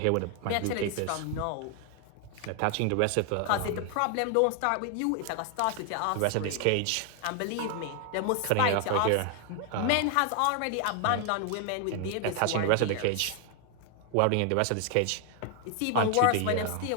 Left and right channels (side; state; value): both; different; correlation 0.00